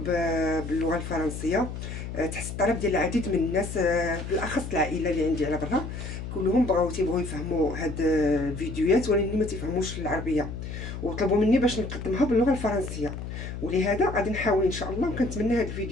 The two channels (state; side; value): noise; left; hum, 7 dB below the sound